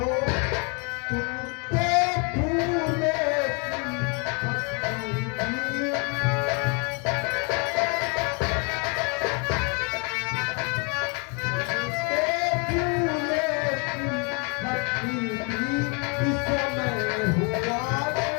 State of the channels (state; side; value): quieter; right; 35.1 dB